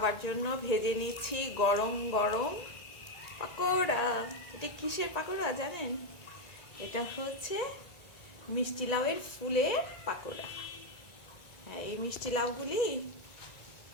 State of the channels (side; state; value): right; late; 1.9 ms